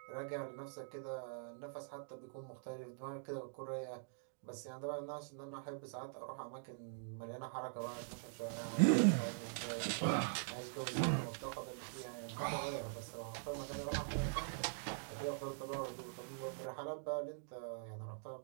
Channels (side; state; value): left; silent; digital silence